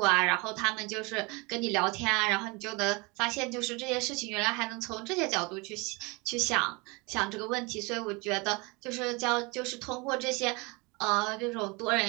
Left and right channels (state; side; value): quieter; left; 27.2 dB